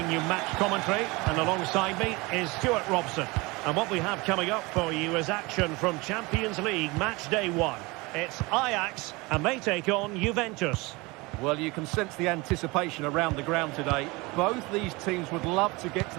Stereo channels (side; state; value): left; quieter; 24.4 dB